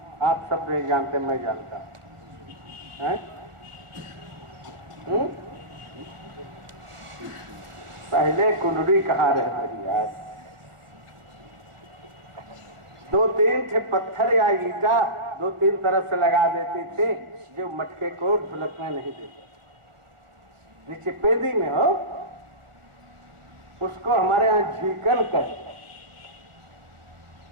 आप सब नहीं जानते, मैं जानता हूं। पहले कुंडली कहाँ रह गई यार? 2-3 थे पत्थर या ईटा 2-3 तरफ से लगा देती थी, जो मटके को ढुलकने नहीं देते। नीचे पेंदी में हो, उसको हमारे यहाँ झीकन कहते हैं,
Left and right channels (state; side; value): late; left; 1.4 ms